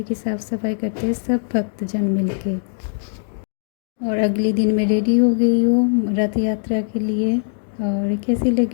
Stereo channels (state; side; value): silent; right; digital silence